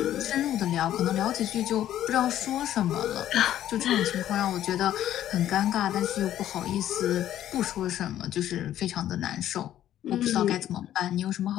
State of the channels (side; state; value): right; quieter; 11.9 dB